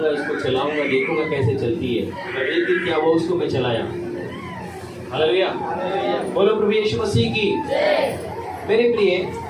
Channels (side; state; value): both; identical; correlation 1.00